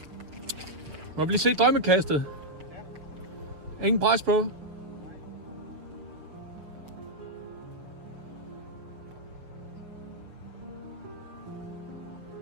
må vi lige se drømmekastet? Ja. Ingen pres på?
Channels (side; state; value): left; late; 6.8 ms